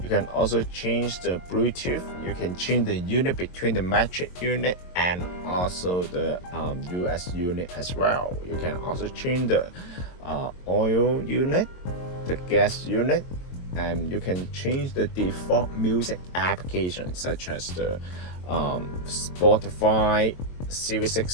You can also change the Bluetooth. You can change the unit between the metric unit and also the US unit as well. You can also change the oil unit, the gas unit, and you can change the default music application such as the Spotify, Series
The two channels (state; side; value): late; right; 22 ms